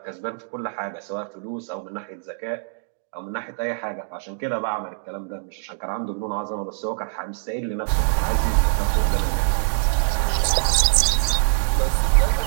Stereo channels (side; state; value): left; silent; digital silence